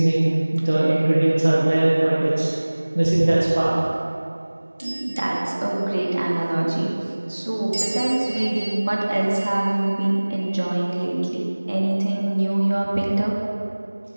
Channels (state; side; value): inverted; both; correlation -1.00